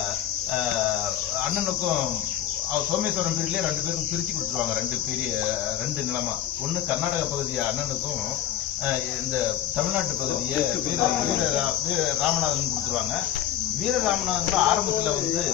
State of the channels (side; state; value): right; quieter; 11.4 dB